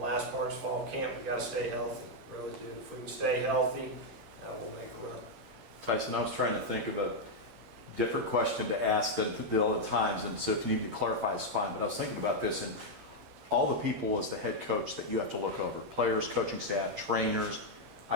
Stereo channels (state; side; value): late; left; 10 ms